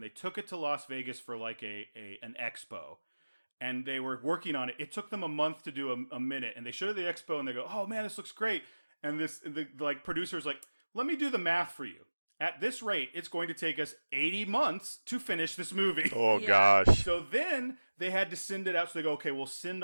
they took it to Las Vegas for like an expo. And they were working on it. It took them a month to do a minute, and they showed it at the expo, and they go, "Oh man, this looks great." And the producer's like, "Let me do the math for you. At this rate, it's going to take us 80 months to finish this movie." Oh gosh. So then they had to send it out. So they go, "Okay, we'll send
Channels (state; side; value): inverted; both; correlation -1.00